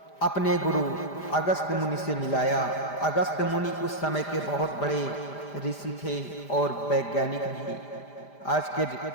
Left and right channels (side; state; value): right; late; 5.0 ms